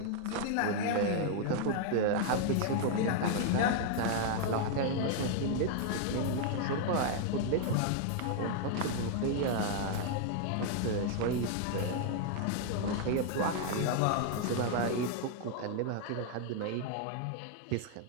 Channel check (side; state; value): both; different; correlation 0.00